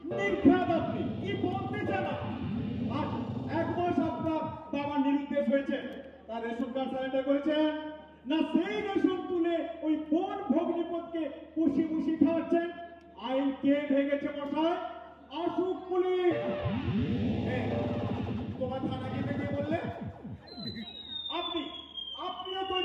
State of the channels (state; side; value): identical; both; correlation 1.00